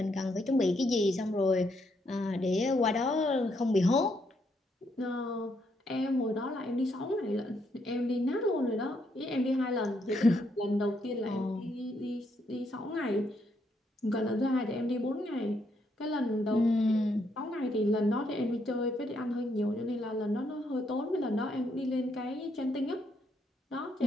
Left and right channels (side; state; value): both; normal; correlation 0.75